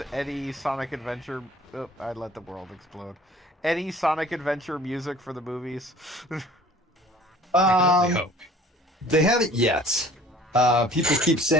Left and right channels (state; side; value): normal; both; correlation 0.49